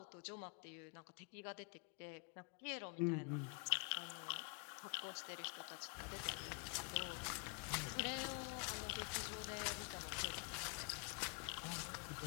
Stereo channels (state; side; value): quieter; right; 36.0 dB